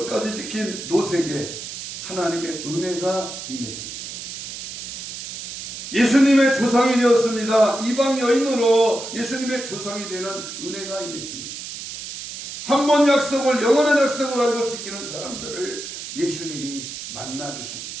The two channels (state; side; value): noise; right; hiss, 9 dB below the sound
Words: 지킨 롯에게 하나님의 은혜가 임했습니다. 예수님의 조상이 되었습니다. 이방 여인으로 예수님의 조상이 되는 은혜가 임했습니다. 한 번 약속을 영원한 약속을 알고 지키는 사람들을 예수님이 만나주십니다.